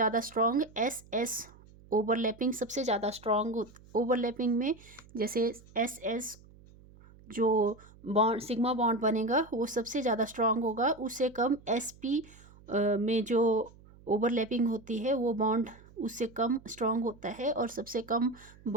स्ट्रॉन्ग एस एस ओवरलैपिंग सबसे ज़्यादा स्ट्रॉन्ग ओवरलैपिंग में, जैसे एस एस जो बॉन्ड सिग्मा बॉन्ड बनेगा वो सबसे ज़्यादा स्ट्रॉन्ग होगा, उससे कम एस पी में जो ओवरलैपिंग होती है वो बॉन्ड उससे कम स्ट्रॉन्ग होता है, और सबसे कम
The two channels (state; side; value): noise; right; hum, 24 dB below the sound